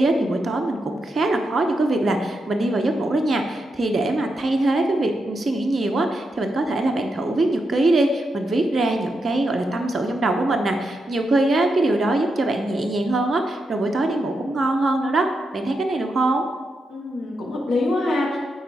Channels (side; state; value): both; normal; correlation 0.85